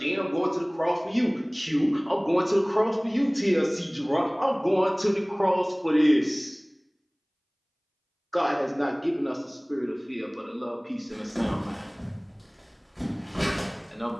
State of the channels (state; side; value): identical; both; correlation 1.00